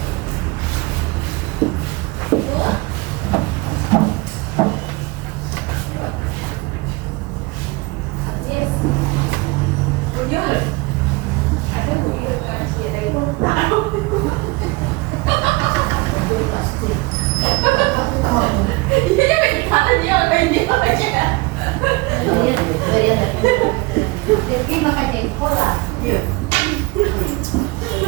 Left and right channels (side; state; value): left; quieter; 24.3 dB